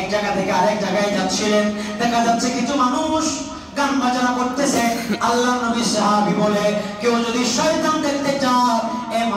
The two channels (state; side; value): identical; both; correlation 1.00